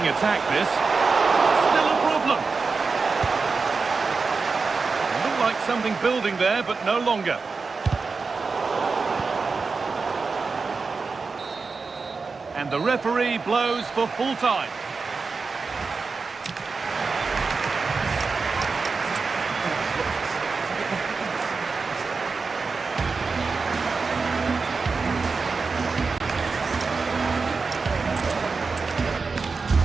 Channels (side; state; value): left; quieter; 4.5 dB